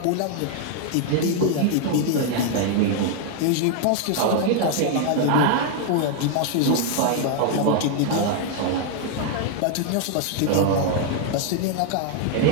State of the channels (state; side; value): different; both; correlation 0.00